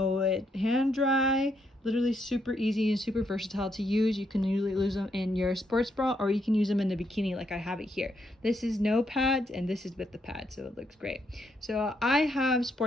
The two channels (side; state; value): both; normal; correlation 0.76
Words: at hand dry. Literally super easy and super versatile to use. You can usually use them in your sports bra or you can use them in the bikini like I have it here. This is no pads and this is with the pads, so it looks great. So I have